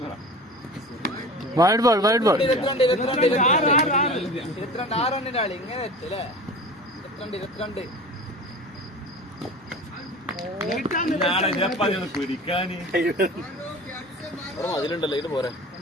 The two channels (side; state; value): both; normal; correlation 0.36